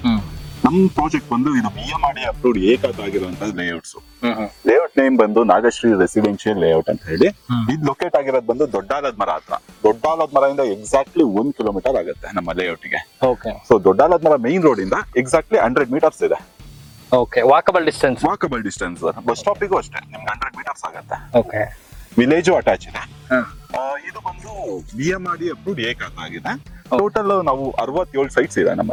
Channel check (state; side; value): identical; both; correlation 1.00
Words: ನಮ್ ಪ್ರಾಜೆಕ್ಟ್ ಬಂದು ಇದು ಬಿಎಂಆರ್ಡಿಎ ಅಪ್ರೂವ್ಡ್ ಏಕಾತ ಆಗಿರುವಂತ ಲೇಔಟ್ಸ್. ಲೇಔಟ್ ನೇಮ್ ಬಂದು ನಾಗಶ್ರೀ ರೆಸಿಡೆನ್ಶಿಯಲ್ ಲೇಔಟ್ ಅಂತ ಹೇಳಿ. ಇದು ಲೊಕೇಟ್ ಆಗಿರೋದು ಬಂದು ದೊಡ್ಡಾಲದ ಮರ ಹತ್ರ. ದೊಡ್ಡಾಲದ ಮರದಿಂದ ಎಕ್ಸಾಕ್ಟ್ಲಿ 1 ಕಿಲೋಮೀಟರ್ ಆಗುತ್ತೆ ನಮ್ಮ ಲೇಔಟ್ ಗೆ. ಸೊ ದೊಡ್ಡಾಲದ ಮರ ಮೈನ್ ರೋಡ್ ಇಂದ ಎಕ್ಸಾಕ್ಟ್ಲಿ 100 ಮೀಟರ್ಸ್ ಇದೆ. ವಾಕಬಲ್ ಡಿಸ್ಟೆನ್ಸ್ ಬಸ್ ಸ್ಟಾಪಿಗೂ ಅಷ್ಟೇ ನಿಮ್ಗೆ 100 ಮೀಟರ್ಸ್ ಆಗುತ್ತೆ. ವಿಲೇಜು ಅಟ್ಯಾಚ್ ಇದೆ. ಇದು ಬಂದು ಬಿಎಂಆರ್ಡಿಎ ಅಪ್ರೂವ್ಡ್ ಏಕಾತ ಆಗಿದೆ. ಟೋಟಲ್ ನಾವು 67 ಸೈಟ್ಸ್ ಇದೆ